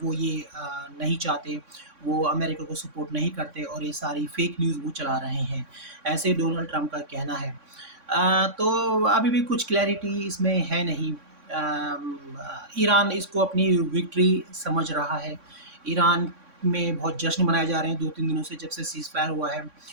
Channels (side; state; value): left; late; 3.6 ms